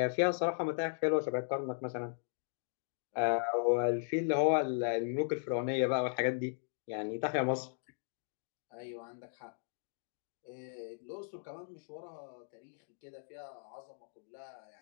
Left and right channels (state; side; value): silent; right; digital silence